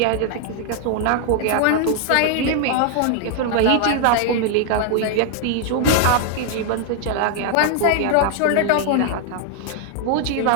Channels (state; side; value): different; both; correlation 0.00